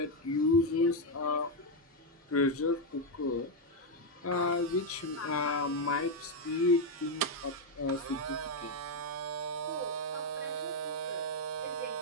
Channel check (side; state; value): both; normal; correlation 0.03